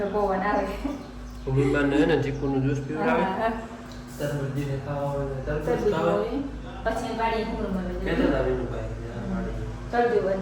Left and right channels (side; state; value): both; identical; correlation 1.00